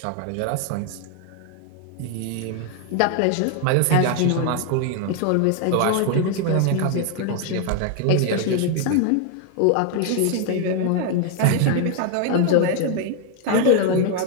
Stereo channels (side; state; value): both; different; correlation 0.00